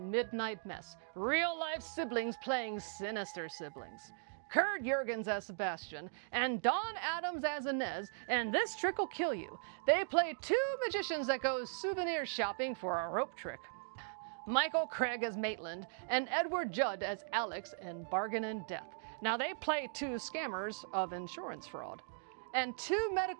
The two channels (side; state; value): left; silent; digital silence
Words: Midnight Mess. Real-life siblings playing sinister siblings. Kurt Jurgens as Sebastian, and Dawn Adams as Inez, and This Trick Will Kill You. They play 2 magicians that go souvenir shopping for a rope trick. Michael Craig as Maitland, and Edward Judd as Alex in Bargain in Death. Now they play 2 scammers of insurance fraud. And 2